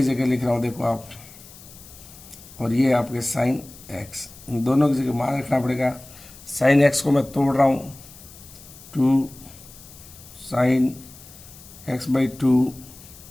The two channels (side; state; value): left; noise; hiss, 20 dB below the sound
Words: जगह लिख रहा हूँ देखो आप, और ये आपके sin x, इन दोनों की जगह मान रखना पड़ेगा। sin x को मैं तोड़ रहा हूँ 2 sin x/2